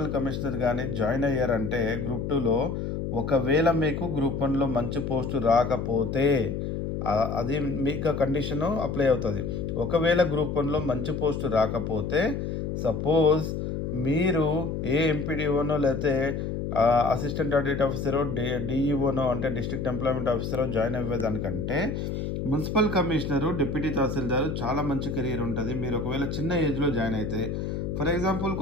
కమిషనర్ కానీ జాయిన్ అయ్యారంటే గ్రూప్ 2లో ఒకవేళ మీకు గ్రూప్ 1లో మంచి పోస్టు రాకపోతే అది మీకు కండిషన్ అప్లై అవుతుంది. ఒకవేళ గ్రూప్ 1లో మంచి పోస్టు రాకపోతే సపోజ్ మీరు ఏ ఎంపీడీఓనో లేకపోతే అసిస్టెంట్ ఆడిట్ ఆఫీసరో డిఈఓనో అంటే డిస్ట్రిక్ట్ ఎంప్లాయ్మెంట్ ఆఫీసరో జాయిన్ అయ్యేదానికంటే మున్సిపల్ కమిషనరు డిప్యూటీ తహసీల్దారు చాలా మంచి కెరీర్ ఉంటుంది. మీరు ఒకవేళ చిన్న ఏజ్లో జాయిన్ అయితే ఫర్ ఎగ్జాంపుల్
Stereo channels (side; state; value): left; noise; hum, 3 dB below the sound